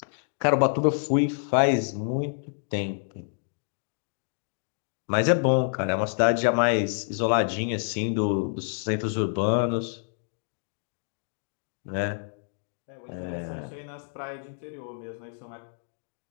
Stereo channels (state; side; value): silent; right; digital silence